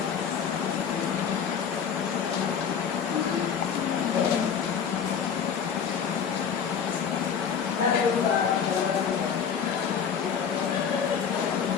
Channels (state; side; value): quieter; right; 7.2 dB